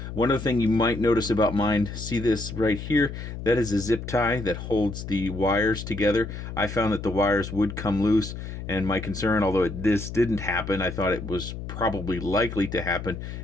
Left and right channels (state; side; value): noise; left; hum, 8 dB below the sound